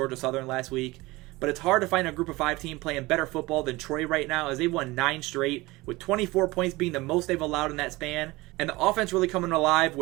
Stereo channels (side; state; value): left; quieter; 21.1 dB